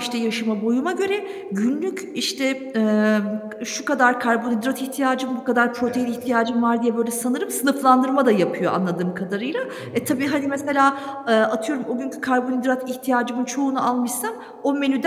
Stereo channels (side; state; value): both; identical; correlation 1.00